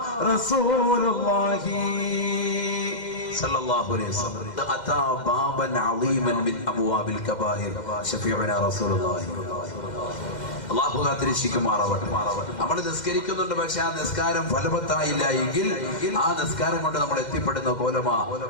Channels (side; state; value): right; late; 2.1 ms